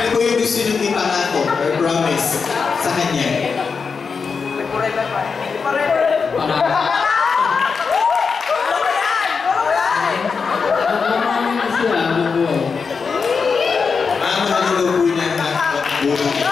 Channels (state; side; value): quieter; right; 5.3 dB